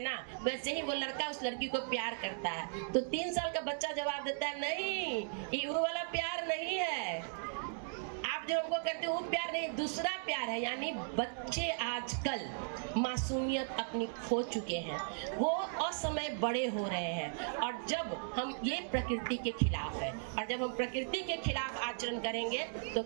ना, वैसे ही वो लड़का उस लड़की को प्यार करता है। तो 3 साल का बच्चा जवाब देता है नहीं, ये वो वाला प्यार नहीं है, आप जो हमको करते हो वो प्यार नहीं, दूसरा प्यार है। यानी बच्चे आजकल मासूमियत अपनी खो चुके हैं, वो असमय बड़े हो रहे हैं। और जब हम ये प्रकृति के खिलाफ है, और जब हम प्रकृति के खिलाफ आचरण करेंगे तो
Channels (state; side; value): silent; left; digital silence